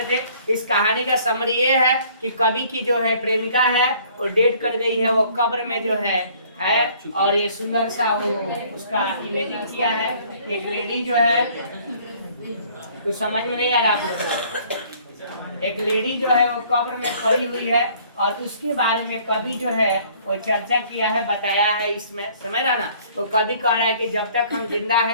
थे। इस कहानी का समरी ये है कि कवि की जो है प्रेमिका है वो डेट कर गई है, वो कब्र में जो है और ये सुंदर सा वो उसका इमेजिंग किया है। एक लेडी जो है, कुछ समझ में नहीं आ रहा आप लोग, एक लेडी जो है वो कब्र में पड़ी हुई है और उसके बारे में कवि जो है वो चर्चा किया है, बताया है इसमें, समझ रहा ना। तो कवि कह रहा है कि जब तक हम जिंदा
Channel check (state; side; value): inverted; both; correlation -0.57